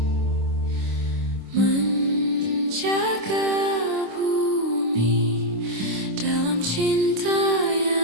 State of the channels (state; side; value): late; left; 26 ms